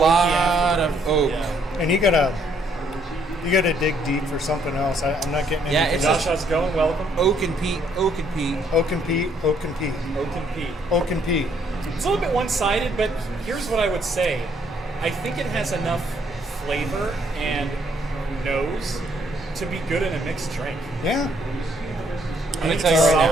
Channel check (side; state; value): both; normal; correlation 0.68